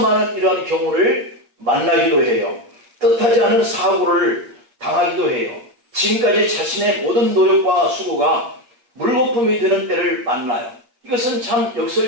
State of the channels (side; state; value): left; late; 8.5 ms